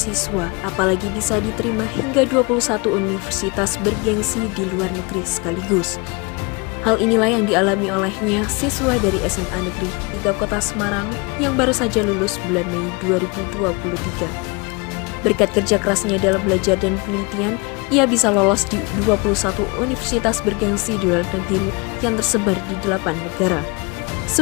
apalagi bisa diterima hingga 21 universitas bergengsi di luar negeri sekaligus. Hal inilah yang dialami olehnya siswa dari SMA Negeri 3 Kota Semarang yang baru saja lulus bulan Mei 2023. Berkat kerja kerasnya dalam belajar dan penelitian, ia bisa lolos di 21 universitas bergengsi di luar negeri yang tersebar di 8 negara.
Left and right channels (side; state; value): right; quieter; 28.5 dB